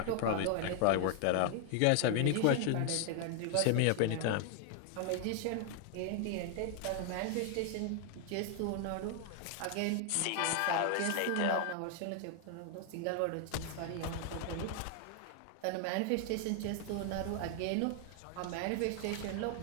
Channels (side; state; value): both; different; correlation 0.00